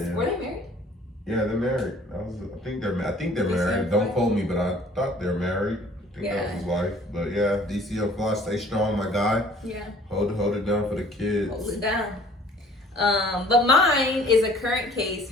married? Yeah, they're married. I think they're married. Don't quote me, but I thought they're married. I think that was his wife. But yeah, DC Unsolved, stay strong, my guy. Yeah. Hold it down for the kids. Hold it down. But mine is a current case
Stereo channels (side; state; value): both; normal; correlation 0.53